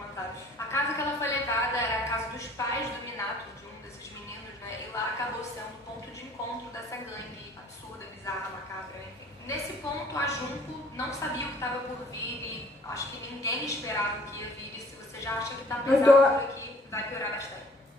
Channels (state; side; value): normal; both; correlation 0.55